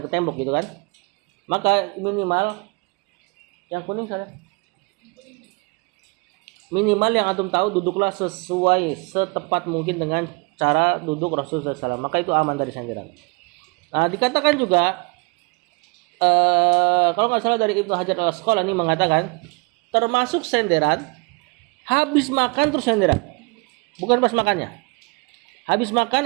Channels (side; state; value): left; quieter; 28.8 dB